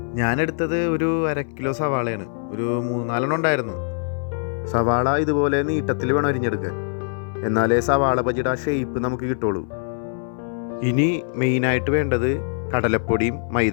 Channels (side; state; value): right; silent; 61 dB below the other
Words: ഞാനെടുത്തത് ഒരു 1/2 കിലോ സവാളയാണ്. ഒരു 3-4 ഉണ്ടായിരുന്നു. സവാള ഇതുപോലെ നീട്ടത്തിൽ വേണം അരിഞ്ഞെടുക്കാൻ, എന്നാലേ സവാള ബജിയുടെ ആ ഷേപ്പ് നമുക്ക് കിട്ടുള്ളൂ. ഇനി മെയിനായിട്ട് വേണ്ടത് കടലപ്പൊടിയും